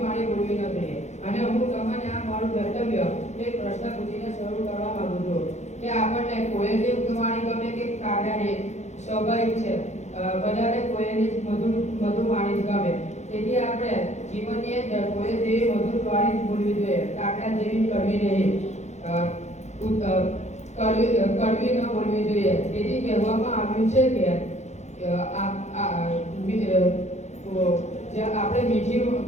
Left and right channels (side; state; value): right; late; 0.33 ms